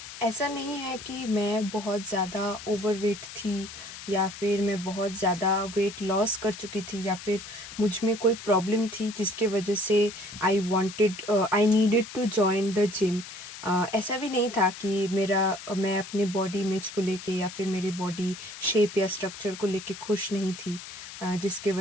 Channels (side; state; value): left; noise; hiss, 13 dB below the sound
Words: ऐसा नहीं है कि मैं बहुत ज़्यादा ओवरवेट थी या फिर मैं बहुत ज़्यादा वेट लॉस कर चुकी थी या फिर मुझ में कोई प्रॉब्लम थी जिसके वजह से I needed to join the gym. ऐसा भी नहीं था कि मैं अपने बॉडी इमेज को लेके या फिर मेरे बॉडी शेप या स्ट्रक्चर को लेके खुश नहीं थी। जिसके